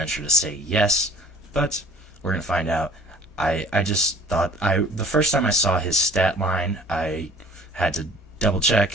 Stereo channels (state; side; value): normal; both; correlation 0.50